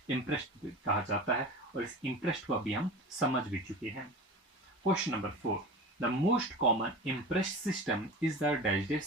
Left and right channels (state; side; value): normal; both; correlation 0.32